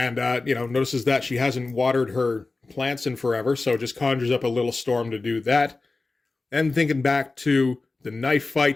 notices that she hasn't watered her plants in forever, so just conjures up a little storm to do that. And thinking back to the knife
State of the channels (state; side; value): quieter; right; 3.6 dB